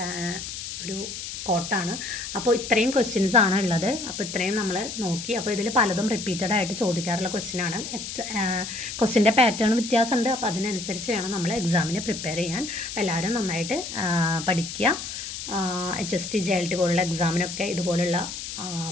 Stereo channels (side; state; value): left; noise; hiss, 8 dB below the sound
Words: ഒരു കോട്ടാണ്. അപ്പോൾ ഇത്രയും ക്വസ്റ്റ്യൻസ് ആണ് ഉള്ളത്. അപ്പോൾ ഇത്രയും നമ്മൾ നോക്കി. അപ്പോൾ ഇതിൽ പലതും റിപ്പീറ്റഡ് ആയിട്ട് ചോദിക്കാറുള്ള ക്വസ്റ്റ്യൻ ആണ്. ക്വസ്റ്റ്യൻ്റെ പാറ്റേൺ വ്യത്യാസമുണ്ട്. അപ്പോൾ അതിനനുസരിച്ച് വേണം നമ്മൾ എക്സാമിന് പ്രിപ്പയർ ചെയ്യാൻ. അപ്പോൾ എല്ലാവരും നന്നായിട്ട് പഠിക്കുക. HST JLT പോലുള്ള എക്സാമിനൊക്കെ ഇതുപോലുള്ള